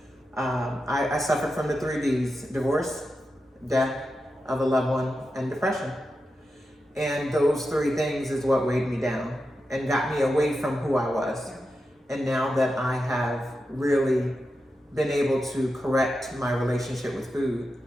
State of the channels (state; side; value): normal; both; correlation 0.89